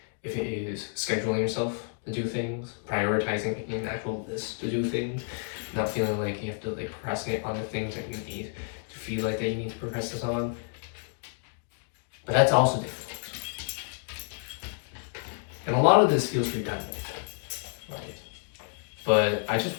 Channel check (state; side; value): silent; right; 58 dB below the other